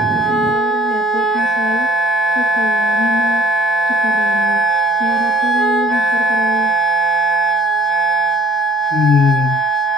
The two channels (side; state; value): both; normal; correlation 0.53